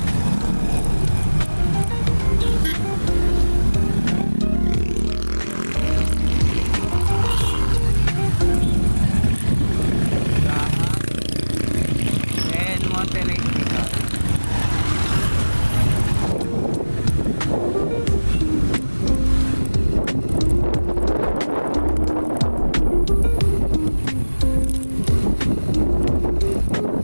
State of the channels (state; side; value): inverted; both; correlation -1.00